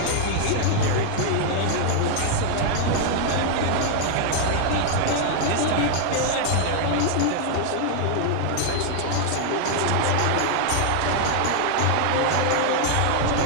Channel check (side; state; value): both; different; correlation 0.00